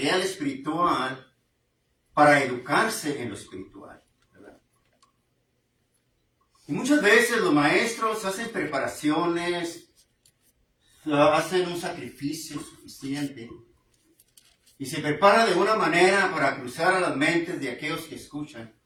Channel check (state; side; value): identical; both; correlation 1.00